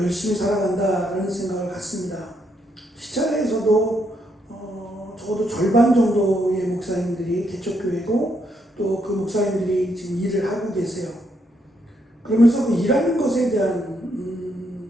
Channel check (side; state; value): both; normal; correlation 0.76